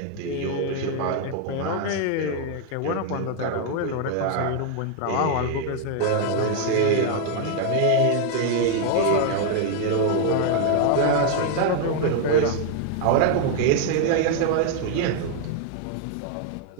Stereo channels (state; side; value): different; both; correlation 0.00